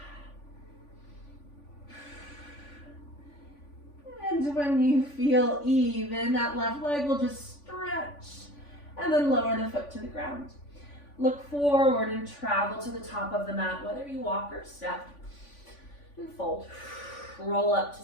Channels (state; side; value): late; right; 3.5 ms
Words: And when you feel even, that left leg will just stretch and then lower the foot to the ground. Look forward and travel to the top of the mat, whether you walk or step. And fold. Roll up to